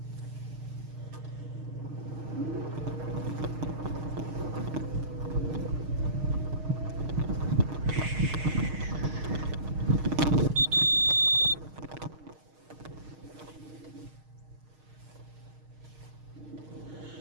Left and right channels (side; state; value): left; late; 6.5 ms